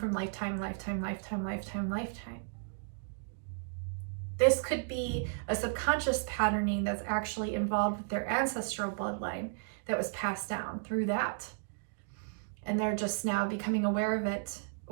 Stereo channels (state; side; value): silent; left; digital silence